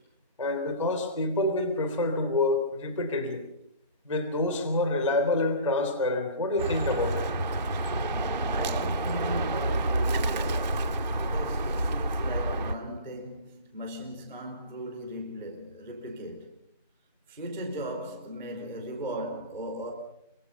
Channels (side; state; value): both; inverted; correlation -0.38